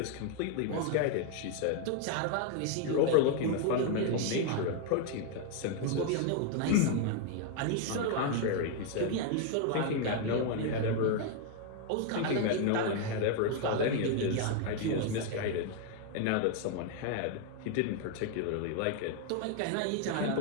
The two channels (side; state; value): both; different; correlation 0.00